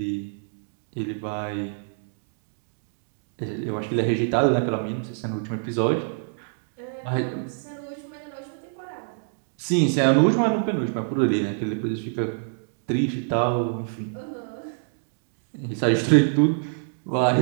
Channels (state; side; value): silent; left; digital silence